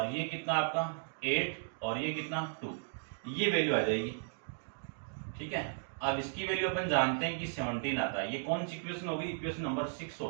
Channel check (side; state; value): left; silent; digital silence